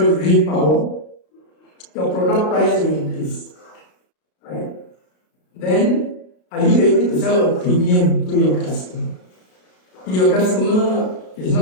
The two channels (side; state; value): right; late; 33 ms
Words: green power, your product price will increase. Right? Then are you able to sell a premium to your customer? If your customer is not